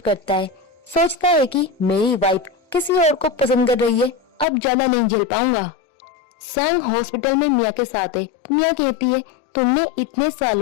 करता है, सोचता है कि मेरी वाइफ किसी और को पसंद कर रही है, अब ज्यादा नहीं झेल पाऊंगा। सांग हॉस्पिटल में मिया के साथ है। मिया कहती है, तुमने इतने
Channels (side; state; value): right; drops out; at 4.5 s